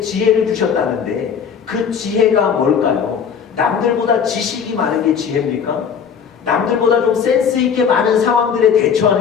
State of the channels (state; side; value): quieter; right; 7.0 dB